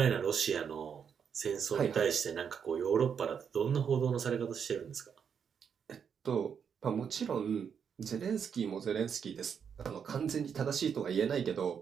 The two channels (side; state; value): left; quieter; 7.2 dB